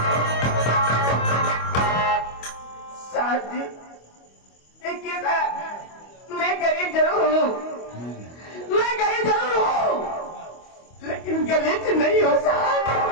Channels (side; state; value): right; late; 25 ms